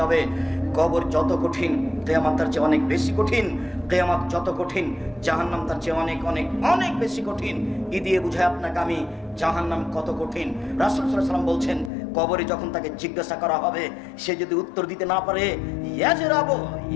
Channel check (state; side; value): drops out; right; at 11.9 s